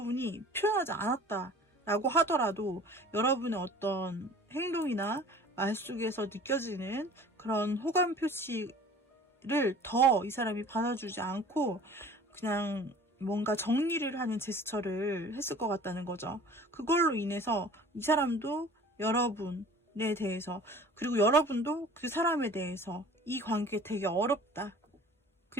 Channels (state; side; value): normal; both; correlation 0.46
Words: 표현하지 않았다라고 하더라도 여러분의 어떤 행동이나 말 속에서 느껴지는 그런 호감 표시를 더 이 사람이 받아주지 않고 그냥 뭔가 정리를 하는 제스처를 했을 것 같다는 거죠. 그걸로 인해서 이 사람도 여러분에 대해서, 그리고 여러분도 그 사람에 대해서 이 관계 되게 어렵다.